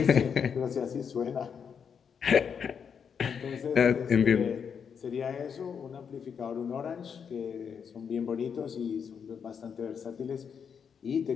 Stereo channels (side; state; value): right; quieter; 7.0 dB